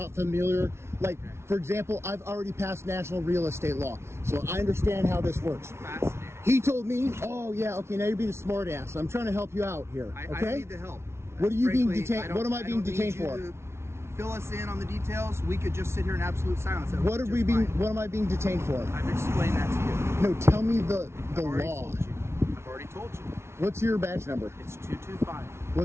familiar. Like, for example, I've already passed national real estate law, so I understand how this works. Fascinating. He told me, oh yeah, okay, now you're being a smart ass. I'm trying to help you out here, I okay? need the help. What are you being Frankly, detained? What am I being don't detained need you for? to Fill us in on the details. We could just sit here in absolute silence. That What would are be we just being? fine. What am I being detained for? I've explained that to you. No, tell me the I've already law. told you. I've already told you. What's your badge number? It's 225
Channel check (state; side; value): late; left; 0.13 ms